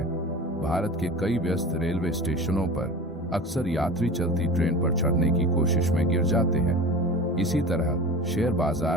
भारत के कई व्यस्त रेलवे स्टेशनों पर अक्सर यात्री चलती ट्रेन पर चढ़ने की कोशिश में गिर जाते हैं। इसी तरह शेयर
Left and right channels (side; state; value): both; normal; correlation 0.34